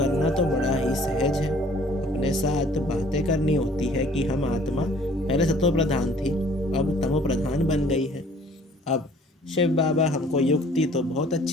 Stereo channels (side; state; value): both; normal; correlation 0.55